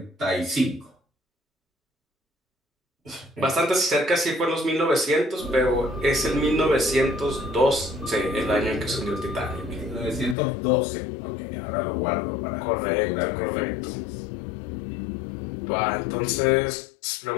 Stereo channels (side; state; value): right; drops out; at 10.4 s